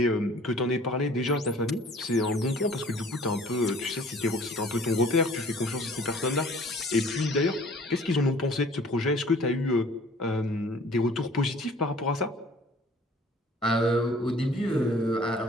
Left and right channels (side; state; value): both; normal; correlation 0.52